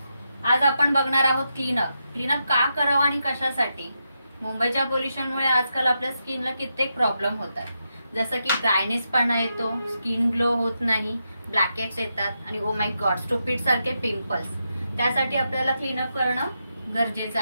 आज आपण बघणार आहोत क्लीनअप का करावं आणि कशासाठी। मुंबईच्या पोल्युशनमुळे आजकाल आपल्या स्किनला कित्येक प्रॉब्लेम होतात, जसं की ड्रायनेसपणा येतो, स्किन ग्लो होत नाही, ब्लॅकेट्स येतात आणि ओ माय गॉड स्टुपिड सारखे पिंपल्स। त्यासाठी आपल्याला क्लीनअप करणं गरजेचं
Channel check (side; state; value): both; inverted; correlation -0.85